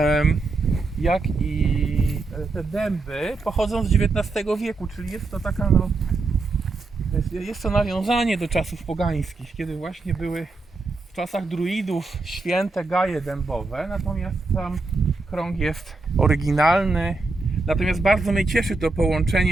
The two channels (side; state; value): left; quieter; 3.5 dB